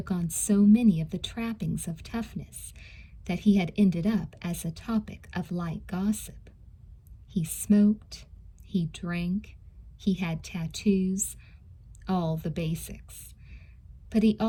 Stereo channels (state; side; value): identical; both; correlation 1.00